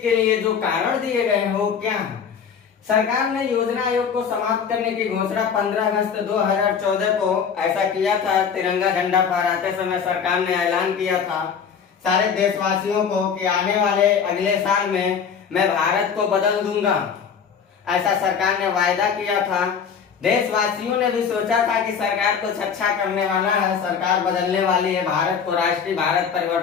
के लिए जो कारण दिए गए हैं वो क्या है। सरकार ने योजना आयोग को समाप्त करने की घोषणा 15 अगस्त 2014 को ऐसा किया था। तिरंगा झंडा फहराते समय सरकार ने ऐलान किया था सारे देशवासियों को कि आने वाले अगले साल में मैं भारत को बदल दूंगा, ऐसा सरकार ने वायदा किया था। देशवासियों ने भी सोचा था कि सरकार कुछ अच्छा करने वाला है, सरकार बदलने वाली है, भारत को राष्ट्रीय भारत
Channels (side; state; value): right; quieter; 6.9 dB